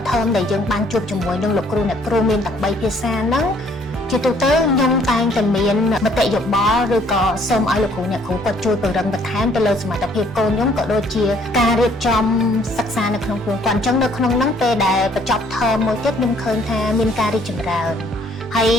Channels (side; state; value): both; normal; correlation 0.62